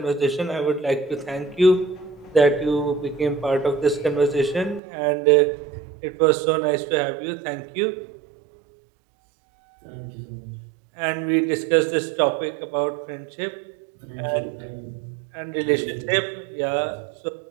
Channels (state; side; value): drops out; left; at 4.8 s